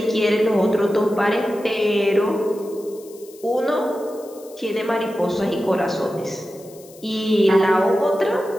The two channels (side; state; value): left; noise; hiss, 23 dB below the sound